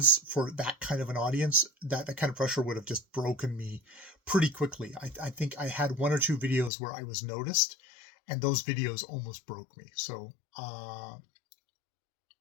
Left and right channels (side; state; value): right; drops out; at 6.7 s